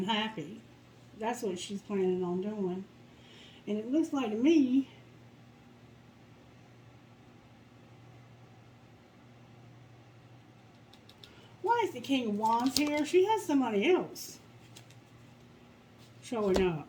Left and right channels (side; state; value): both; identical; correlation 1.00